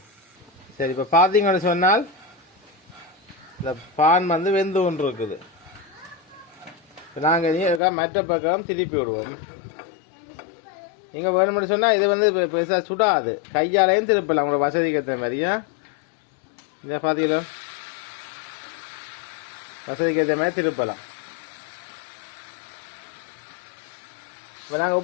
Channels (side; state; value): right; drops out; at 7.8 s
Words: சரி, இப்போ பார்த்தீங்கன்னு சொன்னால் இந்த பான் வந்து வெந்து ஒன்று இருக்குது. இப்போ நாங்கள் மற்ற பக்கம் திருப்பி விடுவோம். நீங்கள் வேணும்னு சொன்னால் இது வந்து பெருசாக சுடாது, கையாலையும் திருப்பலாம் உங்களோட வசதிக்கு ஏற்ற மாதிரியா. இந்த பார்த்தீங்களோ, வசதிக்கு ஏற்ற மாதிரி திருப்பலாம். இப்போ நாங்கள்